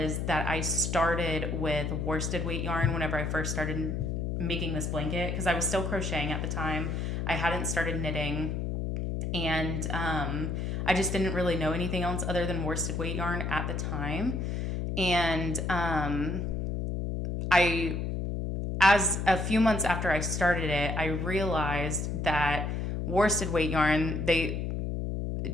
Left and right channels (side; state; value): left; noise; hum, 1 dB below the sound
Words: that I started with worsted weight yarn whenever I first started making this blanket, because I was still crocheting at the time. I hadn't started knitting, and I just didn't really know anything else other than worsted weight yarn at the time. And as a few months after I started it, I realized that worsted weight yarn,